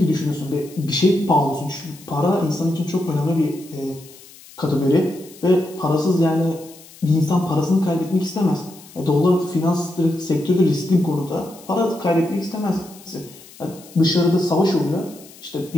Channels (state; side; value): noise; left; hiss, 21 dB below the sound